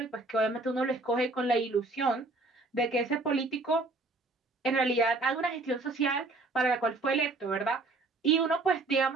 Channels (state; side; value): quieter; left; 3.2 dB